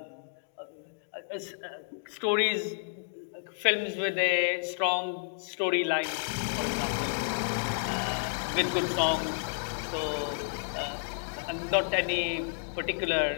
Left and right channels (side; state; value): right; silent; digital silence